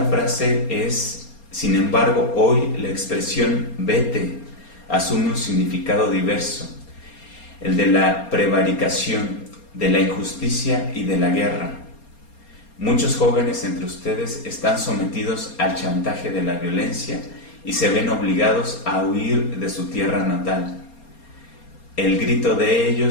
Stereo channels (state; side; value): late; right; 4.3 ms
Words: frase es: sin embargo, hoy la expresión vete asume un significado diverso, el de la prevaricación, de la injusticia y de la guerra. Muchos jóvenes entre ustedes están sometidos al chantaje de la violencia y se ven obligados a huir de su tierra natal. El grito de